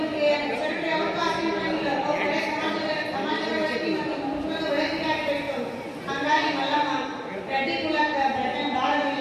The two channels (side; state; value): both; identical; correlation 1.00